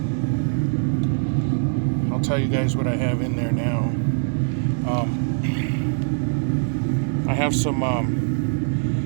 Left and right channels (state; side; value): silent; left; digital silence